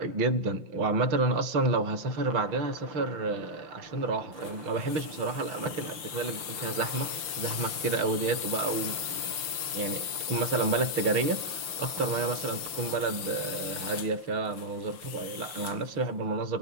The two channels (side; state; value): left; late; 5.9 ms